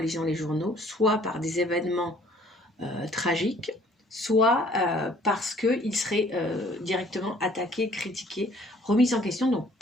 les journaux, soit par des événements tragiques, soit parce qu'il serait directement attaqué, critiqué, remis en question. Donc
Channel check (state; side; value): normal; both; correlation 0.57